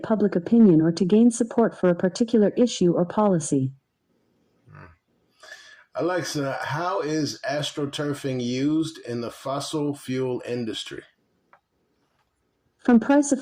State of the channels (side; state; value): both; identical; correlation 1.00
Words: public opinion or to gain support for a particular issue or policy. Alexa, how is astroturfing used in the fossil fuel industry? From